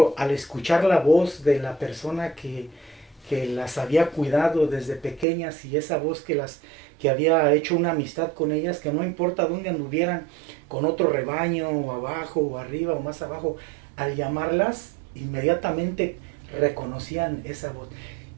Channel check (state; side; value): drops out; left; at 5.2 s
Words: al escuchar la voz de la persona que las había cuidado desde pequeñas y esa voz que había hecho una amistad con ellas, que no importa dónde anduvieran con otro rebaño o abajo o arriba o más abajo, al llamarlas inmediatamente reconocían esa voz.